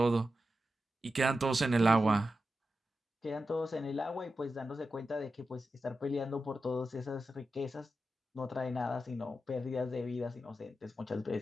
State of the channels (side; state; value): both; normal; correlation 0.90